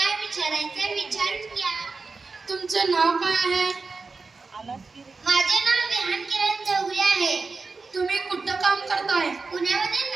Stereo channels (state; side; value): quieter; left; 4.2 dB